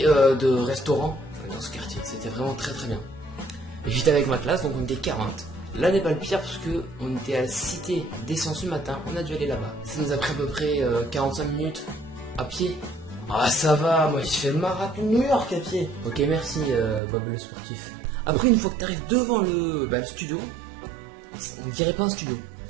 de restaurants dans ce quartier. C'était vraiment très très bien. Et j'étais avec ma classe, donc on était 40. Là n'est pas le pire parce que on était à la cité des sciences ce matin, on a dû aller là-bas. Ça nous a pris à peu près 45 minutes à pied. Ah ça va, moi j'ai fait le marathon New York à pied. Ok merci Bob le sportif. Après une fois que tu arrives devant le studio, on dirait pas un studio.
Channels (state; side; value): drops out; left; at 17.0 s